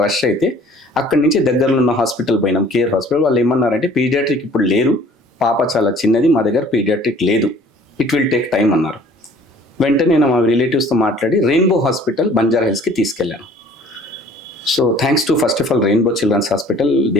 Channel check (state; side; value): normal; both; correlation 0.53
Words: రష్ అయితే అక్కడి నుంచి దగ్గరలో ఉన్న హాస్పిటల్ పోయినాం, కేర్ హాస్పిటల్. వాళ్ళు ఏమన్నారంటే పీడియాట్రిక్ ఇప్పుడు లేరు, పాప చాలా చిన్నది, మా దగ్గర పీడియాట్రిక్ లేదు, ఇట్ విల్ టేక్ టైం అన్నారు. వెంటనే నేను మా రిలేటివ్స్తో మాట్లాడి రెయిన్బో హాస్పిటల్ బంజారా హిల్స్కి తీసుకెళ్ళాను. So thanks to first of all Rainbow Children's Hospital,